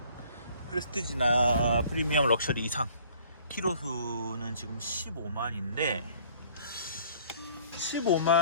프레스티지나 프리미엄 럭셔리 이상 키로수는 지금 15만인데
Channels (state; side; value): inverted; both; correlation -0.55